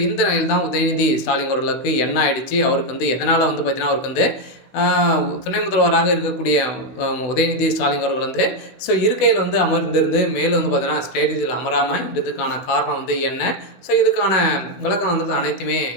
இந்த நிலையில் தான் உதயநிதி ஸ்டாலின் அவர்களுக்கு என்ன ஆயிடுச்சு, அவருக்கு எதனால் பார்த்தீங்கன்னா அவருக்கு துணை முதல்வராக இருக்கக்கூடிய உதயநிதி ஸ்டாலின் அவர்கள் ஸோ இருக்கையில் அமர்ந்திருந்து மேலும் பார்த்தீங்கன்னா ஸ்டேஜில் அமராமல் இதுக்கான காரணம் என்ன, ஸோ இதுக்கான விளக்கம் அனைத்துமே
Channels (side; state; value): right; late; 16 ms